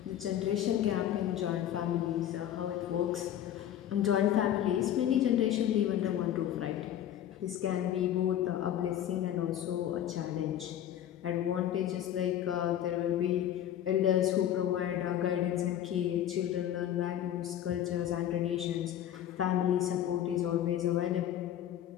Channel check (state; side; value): quieter; right; 11.1 dB